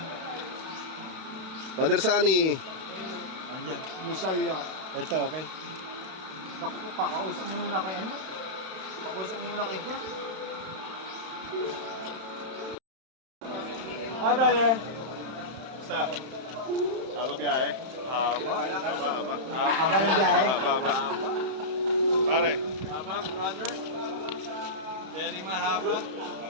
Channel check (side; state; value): left; late; 31 ms